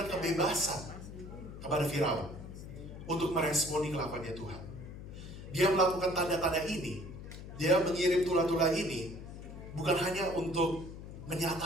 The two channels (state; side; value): noise; left; hum, 12 dB below the sound